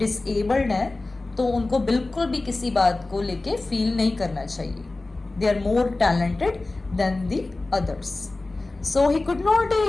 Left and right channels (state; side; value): quieter; right; 3.1 dB